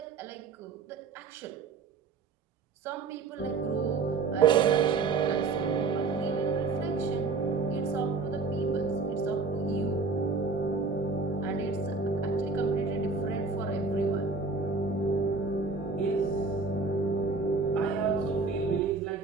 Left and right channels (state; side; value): quieter; left; 4.3 dB